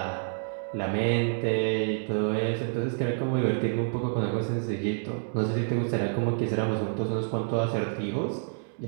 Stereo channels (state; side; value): silent; left; digital silence